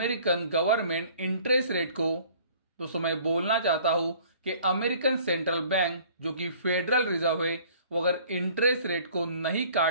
गवर्नमेंट इंटरेस्ट रेट को, दोस्तों मैं बोलना चाहता हूं कि अमेरिकन सेंट्रल बैंक जो कि फेडरल रिजर्व है, वो अगर इंटरेस्ट रेट को नहीं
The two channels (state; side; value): inverted; both; correlation -0.53